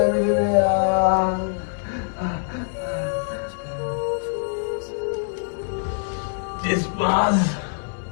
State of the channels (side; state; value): right; silent; 63 dB below the other